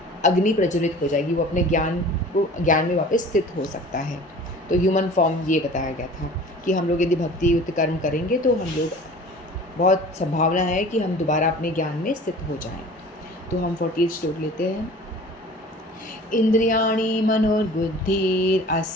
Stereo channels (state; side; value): normal; both; correlation 0.44